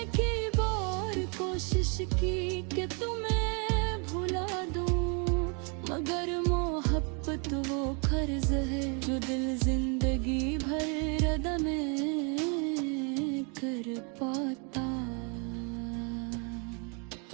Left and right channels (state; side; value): quieter; left; 35.8 dB